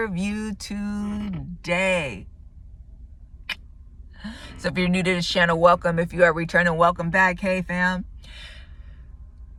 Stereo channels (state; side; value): identical; both; correlation 1.00